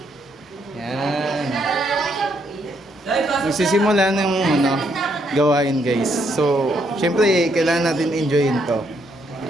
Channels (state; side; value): normal; both; correlation 0.74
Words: Yan. Magsisimula ng gawain guys. So, syempre kailangan natin enjoyin to.